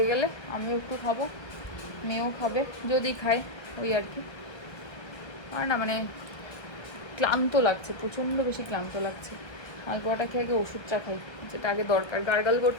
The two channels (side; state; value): right; late; 1.3 ms